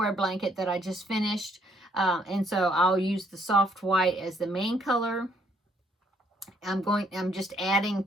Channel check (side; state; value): both; normal; correlation 0.68